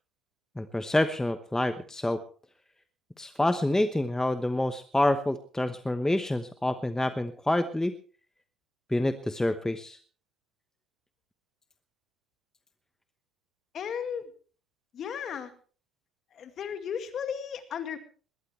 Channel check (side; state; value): both; normal; correlation 0.95